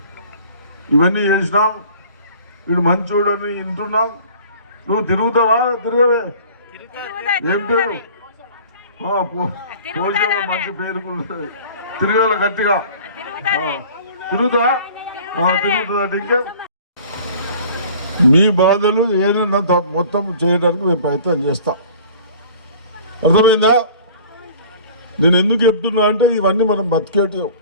ఇవన్నీ చేసినాం. వీడు మంచోడని వింటున్నాం. నువ్వు తిరుగుతావా? తిరగవే. ఏం పేరు? పోషవ మంచి పేరు తిరగాల గట్టిగా. తిరుగుతా తిరుగుతుందంటే ఇంకే మీ బాధలు ఏదైనా మొత్తం చేయడానికి మేము ప్రయత్నం చేస్తాం. అర్థమైందా? నేను ఎందుకు చెప్తున్నా అంటే ఇవన్నీ మనం బతికేటి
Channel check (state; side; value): inverted; both; correlation -0.47